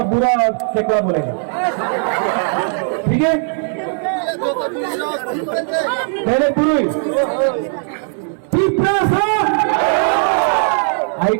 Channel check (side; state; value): left; silent; 66 dB below the other